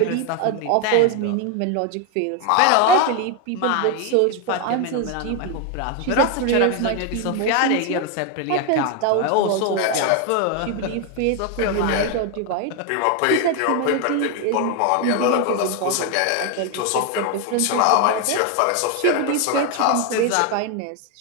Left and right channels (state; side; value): different; both; correlation 0.01